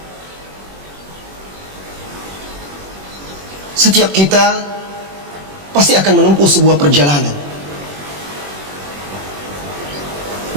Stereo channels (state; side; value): late; left; 21 ms